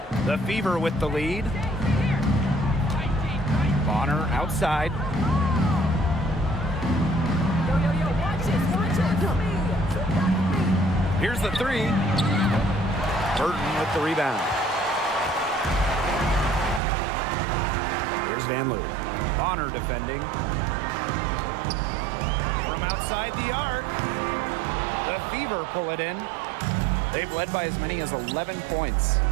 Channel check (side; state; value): left; drops out; at 16.8 s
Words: The Fever with the lead. Bonner outside. Here's the 3. Burton with the rebound. Here's Van Loo. Bonner defending. From outside the arc. The Fever pull it in. They've led by as many as 11 points.